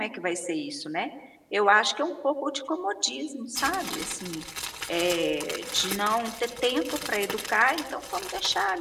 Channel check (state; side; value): identical; both; correlation 1.00